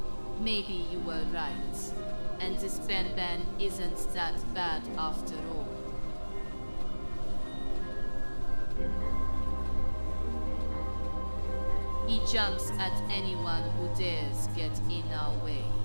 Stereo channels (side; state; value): both; inverted; correlation -1.00